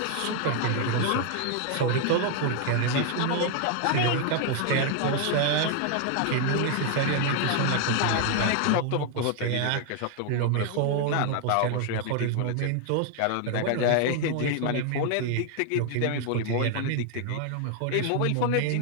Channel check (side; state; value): both; different; correlation 0.00